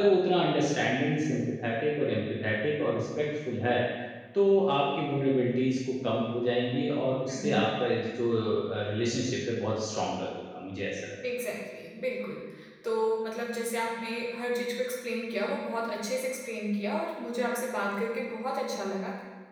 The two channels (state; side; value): identical; both; correlation 1.00